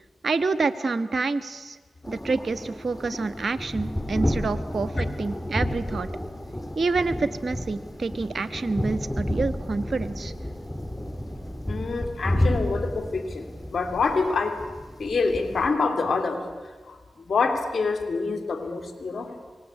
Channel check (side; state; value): both; normal; correlation 0.89